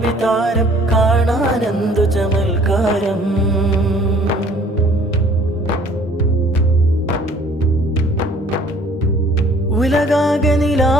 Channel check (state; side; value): normal; both; correlation 0.56